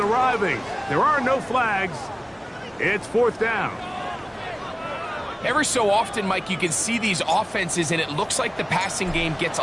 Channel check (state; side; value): identical; both; correlation 1.00